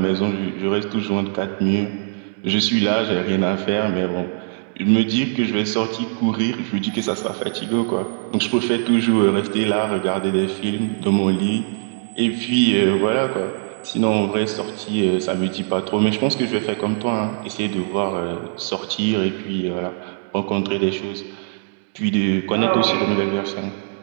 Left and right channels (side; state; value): left; silent; 64 dB below the other